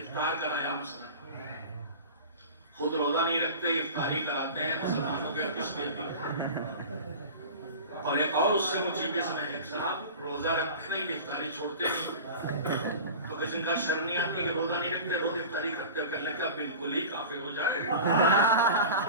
کرایا مثلا، خود روزہ نہیں رکھتے افطاری کراتے ہیں مسلمانوں کے کس میں بھی. اور ایک اور اس سے مجھے میں ایک صاحب روزہ رکھتے نہیں افطاری چھوڑتے نہیں، تو کسی کا شرم نہیں آتی کہ روزہ نہیں رکھتے روز افطاری کرتے، کرنے کا بالکل ہی کافر ہو جائے.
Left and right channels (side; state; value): both; inverted; correlation -0.35